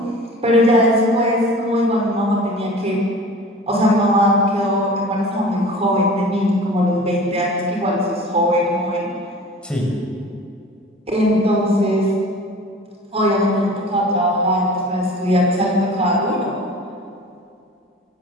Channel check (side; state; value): both; normal; correlation 0.41